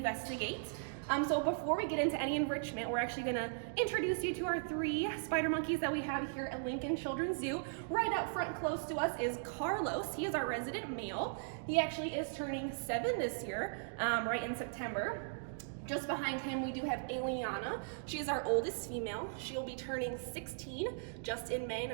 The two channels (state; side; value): silent; left; digital silence